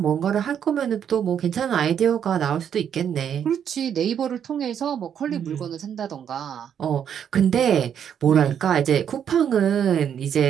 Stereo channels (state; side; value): quieter; left; 8.7 dB